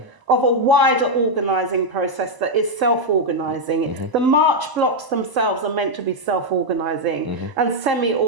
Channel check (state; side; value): late; left; 1.0 ms